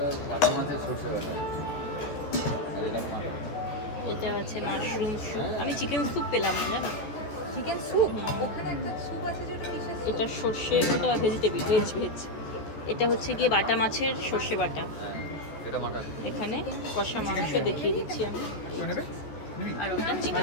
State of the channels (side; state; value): right; late; 14 ms